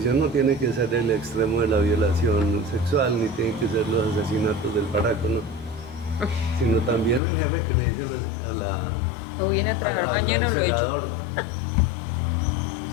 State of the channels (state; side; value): drops out; right; at 7.2 s